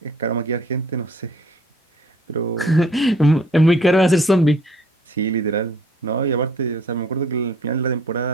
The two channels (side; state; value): both; normal; correlation 0.57